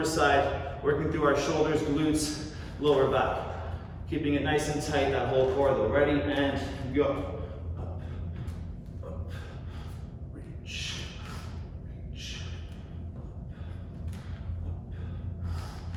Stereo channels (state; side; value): identical; both; correlation 1.00